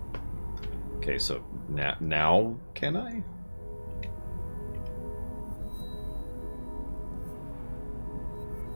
Okay, so now can I?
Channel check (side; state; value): both; inverted; correlation -1.00